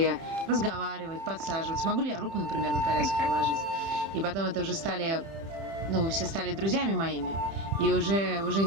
разговаривать, подсаживать. Смогу ли я руку, например, на коляске положить? И потом это уже все стали друзьями моими. И уже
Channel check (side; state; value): left; late; 30 ms